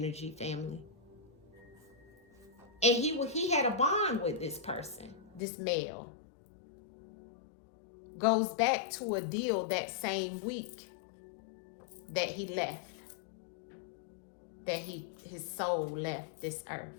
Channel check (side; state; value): right; drops out; at 5.4 s